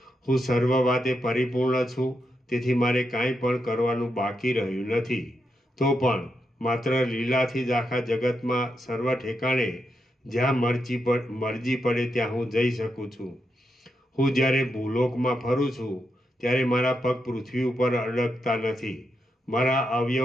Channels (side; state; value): both; normal; correlation 0.84